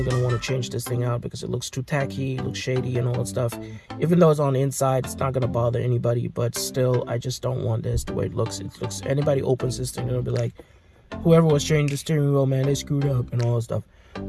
going to want to change this thing out, because it looks too tacky, looks shady and all that stuff. Even though it's on the inside, it's not going to bother anybody, but still, I just don't want this the way it looks. Anybody opens this thing, it'll be like, whoever was changing the steering wheel, man, they screwed up and all that stuff.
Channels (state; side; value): identical; both; correlation 1.00